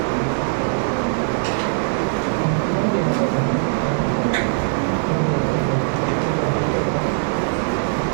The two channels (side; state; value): left; silent; digital silence